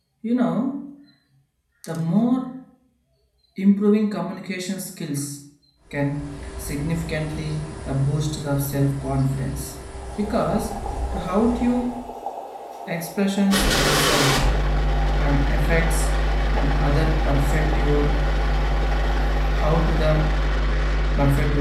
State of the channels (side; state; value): both; identical; correlation 1.00